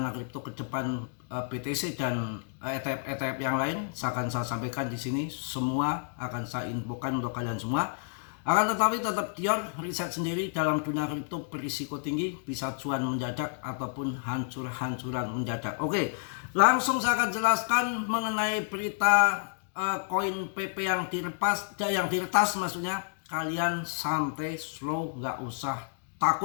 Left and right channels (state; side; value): silent; right; digital silence